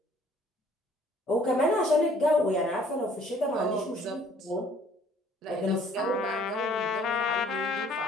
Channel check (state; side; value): normal; both; correlation 0.58